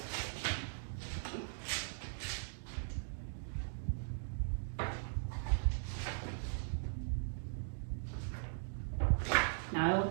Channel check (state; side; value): silent; left; digital silence